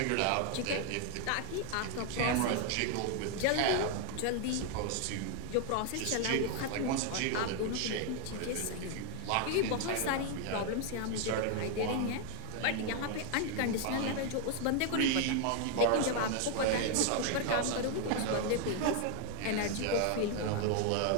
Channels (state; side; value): different; both; correlation 0.00